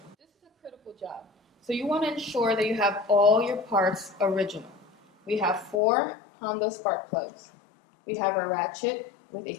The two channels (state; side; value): drops out; right; at 5.8 s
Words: This is a critical job. So you want to ensure that you have all your parts original. We have 4 Honda spark plugs. We have our ratchet with